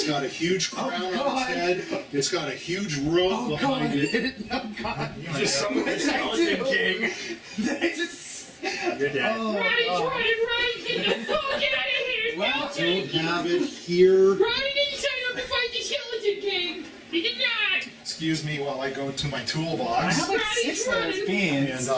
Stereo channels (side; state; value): both; identical; correlation 1.00